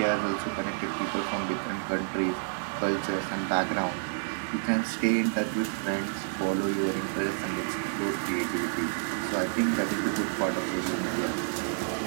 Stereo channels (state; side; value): silent; left; digital silence